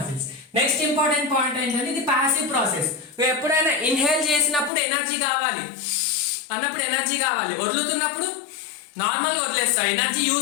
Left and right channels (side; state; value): right; drops out; at 4.7 s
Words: నెక్స్ట్ ఇంపార్టెంట్ పాయింట్ ఏంటంటే ఇది ప్యాసివ్ ప్రాసెస్. ఎప్పుడైనా ఇన్హేల్ చేసినప్పుడు ఎనర్జీ కావాలి అన్నప్పుడు ఎనర్జీ కావాలి, వదులుతున్నప్పుడు నార్మల్ గా వదిలేస్తాం, ఎనర్జీ